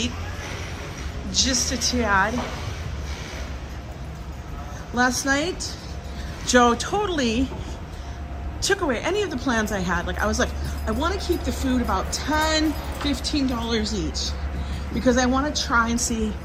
just a tad. Last night, Joe totally took away any of the plans I had. Like, I was like, I want to keep the food about $10, $15 each, because I want to try and see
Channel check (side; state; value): both; identical; correlation 1.00